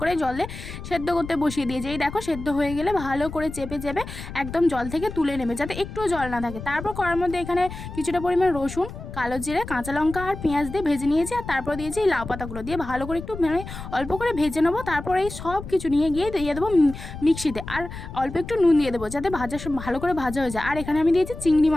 করে জলে সেদ্ধ করতে বসিয়ে দিয়েছি। এই দেখো, সেদ্ধ হয়ে গেলে ভালো করে চেপে চেপে একদম জল থেকে তুলে নেবে, যাতে একটুও জল না থাকে। তারপর কড়ার মধ্যে এখানে কিছুটা পরিমাণ রসুন, কালো জিরে, কাঁচা লঙ্কা আর পেঁয়াজ দিয়ে ভেজে নিয়েছি। আর তারপর দিয়েছি এই লাউ পাতাগুলো দিয়ে ভালো করে একটু অল্প করে ভেজে নেবো। তারপর এই সব কিছু নিয়ে গিয়ে দিয়ে দেবো মিক্সিতে, আর অল্প একটু নুন দিয়ে দেবো যাতে ভালো করে ভাজা হয়ে যায়। আর এখানে আমি দিয়েছি চিংড়ি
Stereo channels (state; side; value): noise; left; rumble, 11 dB below the sound